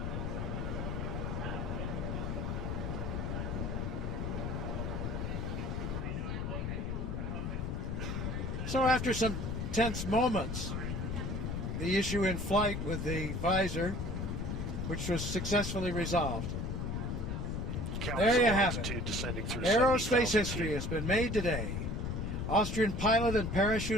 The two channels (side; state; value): left; noise; rumble, 2 dB below the sound